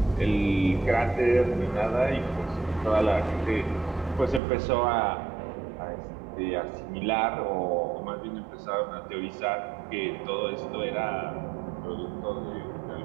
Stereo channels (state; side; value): drops out; left; at 4.4 s